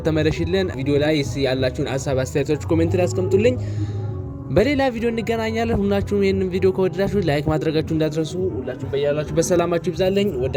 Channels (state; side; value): identical; both; correlation 1.00